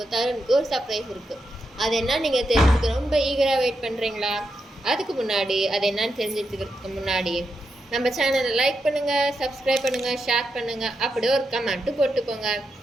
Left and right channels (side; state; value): both; normal; correlation 0.85